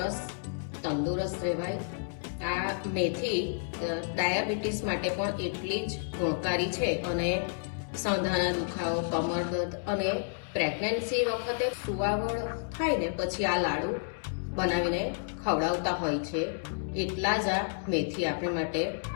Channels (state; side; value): silent; right; digital silence